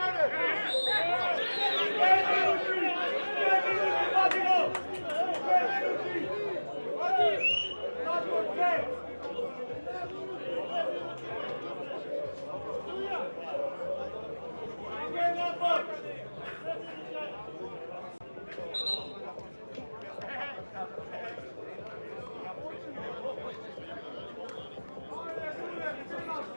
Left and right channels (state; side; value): inverted; both; correlation -1.00